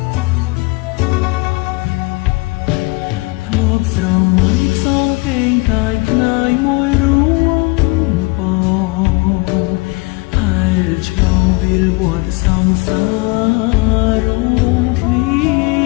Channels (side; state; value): right; quieter; 25.7 dB